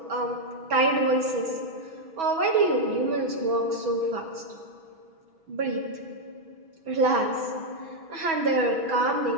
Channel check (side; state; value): left; late; 6.2 ms